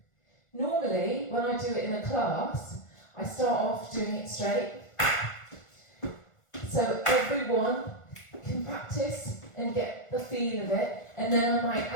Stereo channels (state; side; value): late; right; 1.4 ms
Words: Normally, when I do it in a class, I start off doing it straight. So everyone can practice and get the feel of it, and then I might